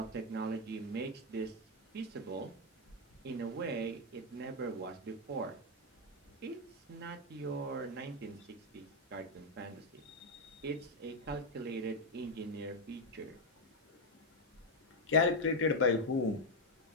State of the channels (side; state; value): both; normal; correlation 0.04